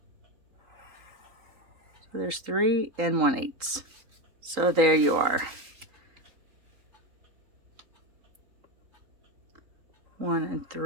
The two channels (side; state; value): left; late; 3.8 ms